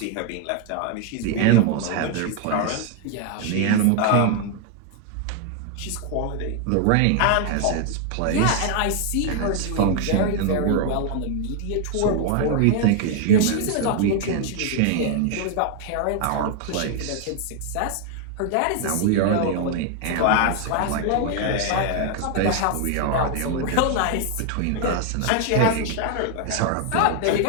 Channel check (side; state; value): both; different; correlation 0.00